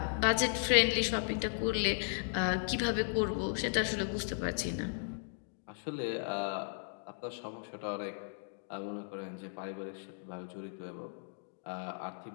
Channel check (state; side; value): silent; right; digital silence